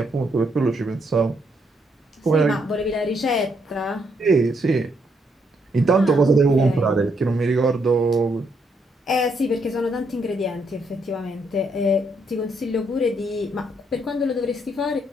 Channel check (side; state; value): both; normal; correlation 0.75